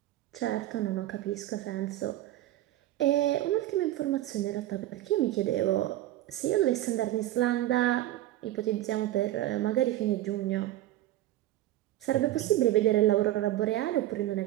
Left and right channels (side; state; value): left; quieter; 14.5 dB